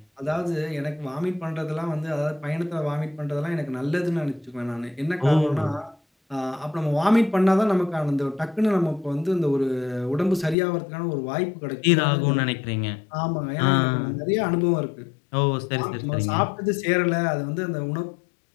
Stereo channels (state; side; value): drops out; right; at 10.6 s